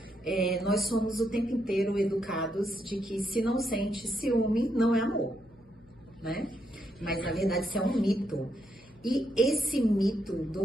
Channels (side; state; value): left; noise; hum, 28 dB below the sound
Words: nós somos o tempo inteiro educados de que se não sente ciúme, não é amor, né? Mas, na verdade, isso é um mito. E esse mito